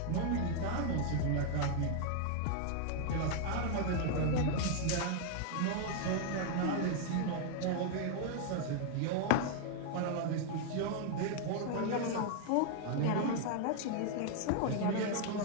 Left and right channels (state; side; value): different; both; correlation 0.00